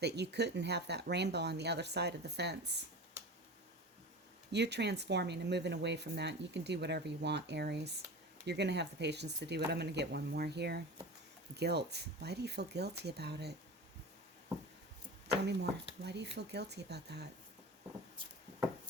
you couldn't have that rainbow on the other side of the fence. You're transforming and moving away from that. You can do whatever you want, Aries. You're going to have the patience to do it. I'm going to get one more here. Guilt. Why do you feel guilty about it? Tell me more. Why do you feel guilty about that?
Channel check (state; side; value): normal; both; correlation 0.32